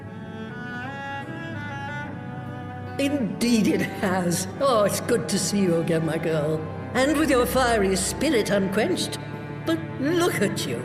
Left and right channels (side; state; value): both; identical; correlation 1.00